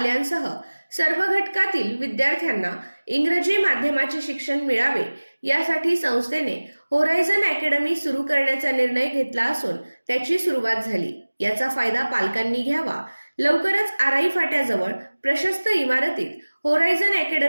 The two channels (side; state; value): both; inverted; correlation -1.00